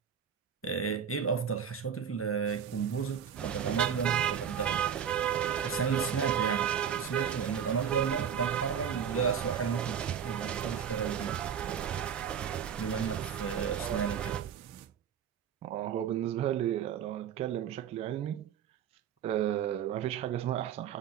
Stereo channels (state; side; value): quieter; left; 8.0 dB